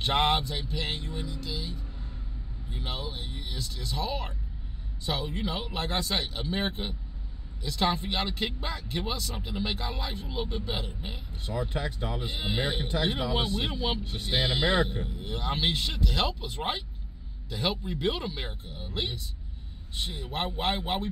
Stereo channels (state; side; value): identical; both; correlation 1.00